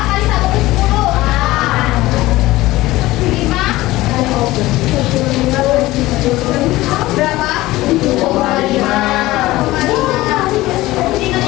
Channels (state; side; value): quieter; right; 18.0 dB